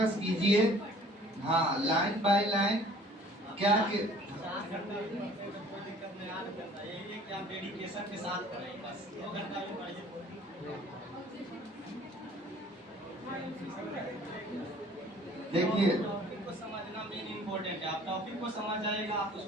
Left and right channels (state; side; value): normal; both; correlation 0.53